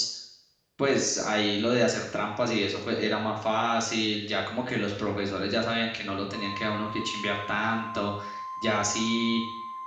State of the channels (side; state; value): both; identical; correlation 1.00